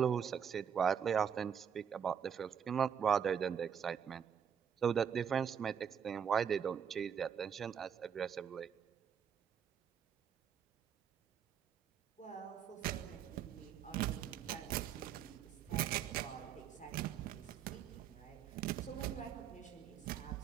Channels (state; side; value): quieter; left; 7.9 dB